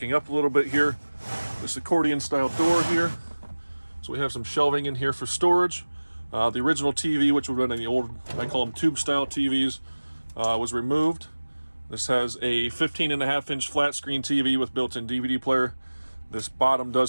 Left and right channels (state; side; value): inverted; both; correlation -1.00